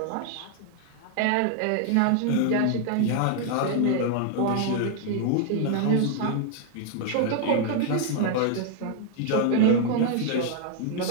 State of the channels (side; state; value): both; different; correlation 0.00